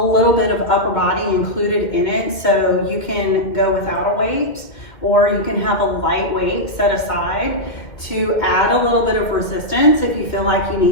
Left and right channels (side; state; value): right; late; 2.1 ms